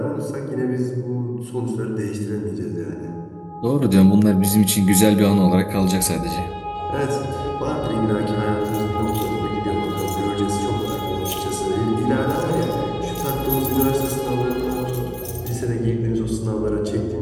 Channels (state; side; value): identical; both; correlation 1.00